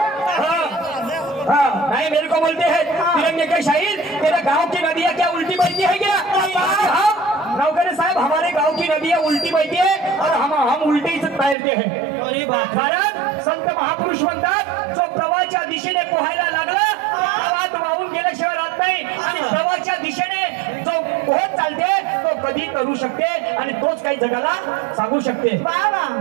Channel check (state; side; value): drops out; left; at 11.6 s